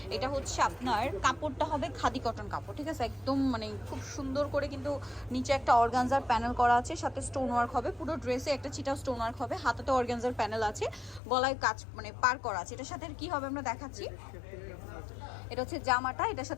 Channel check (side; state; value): right; drops out; at 11.2 s